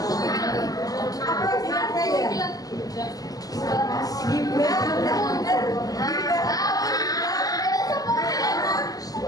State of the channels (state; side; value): late; right; 0.17 ms